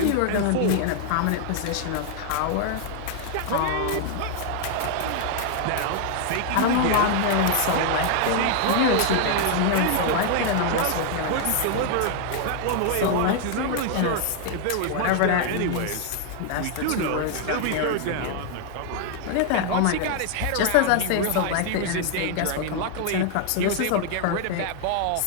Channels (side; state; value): both; different; correlation 0.00